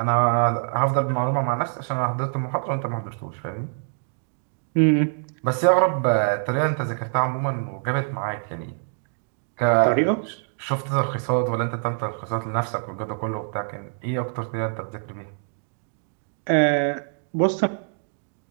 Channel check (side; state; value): left; silent; digital silence